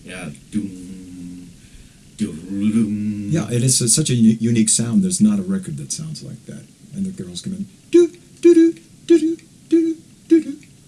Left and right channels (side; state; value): both; identical; correlation 1.00